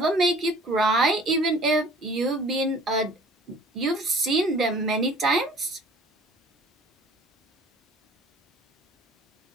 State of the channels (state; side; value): normal; both; correlation 0.51